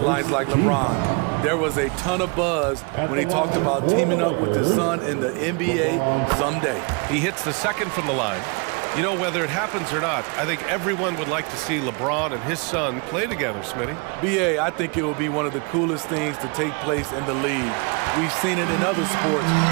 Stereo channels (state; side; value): quieter; left; 33.3 dB